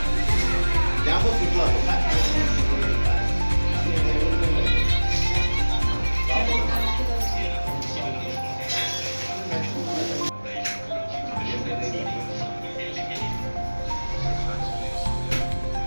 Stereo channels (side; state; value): both; inverted; correlation -1.00